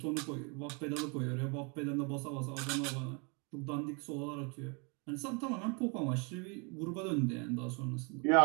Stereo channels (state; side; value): quieter; left; 33.4 dB